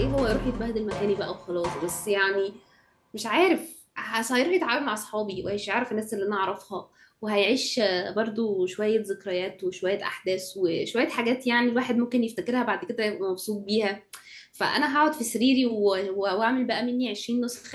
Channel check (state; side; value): identical; both; correlation 1.00